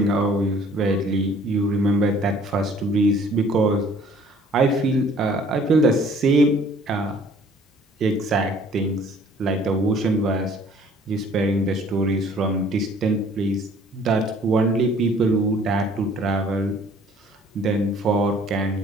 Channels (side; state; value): both; normal; correlation 0.55